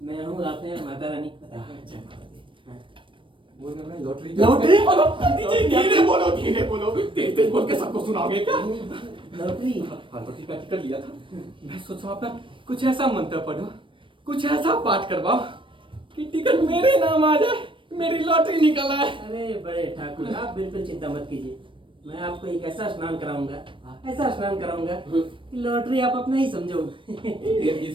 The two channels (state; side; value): late; left; 0.25 ms